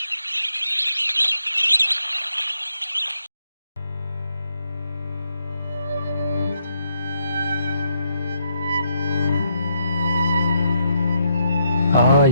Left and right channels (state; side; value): inverted; both; correlation -0.77